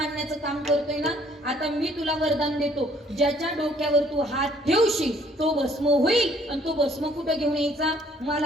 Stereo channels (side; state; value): both; normal; correlation 0.61